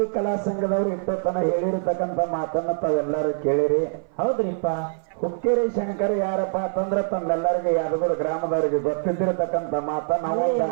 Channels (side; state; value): left; silent; 58 dB below the other